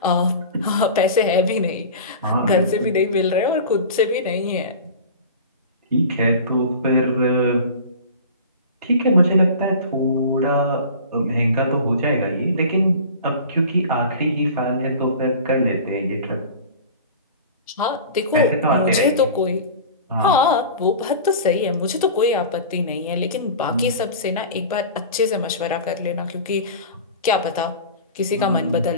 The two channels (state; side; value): inverted; both; correlation -0.36